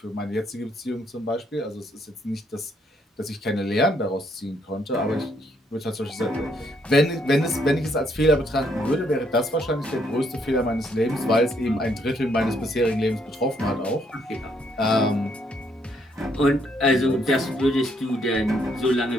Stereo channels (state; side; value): normal; both; correlation 0.71